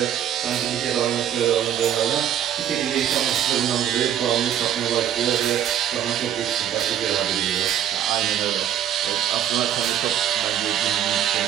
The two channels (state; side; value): quieter; left; 10.1 dB